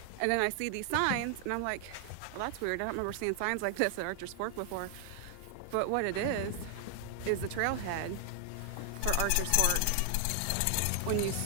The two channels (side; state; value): both; different; correlation 0.00